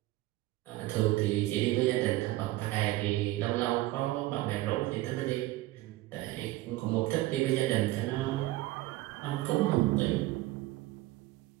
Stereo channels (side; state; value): left; quieter; 17.6 dB